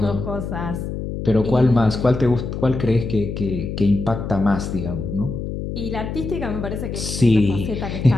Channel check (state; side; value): noise; left; hum, 5 dB below the sound